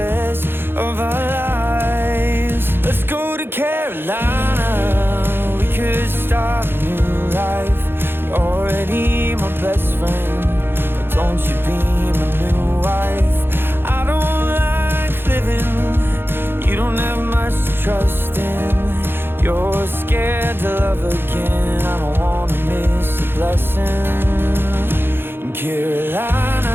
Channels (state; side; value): late; left; 0.10 ms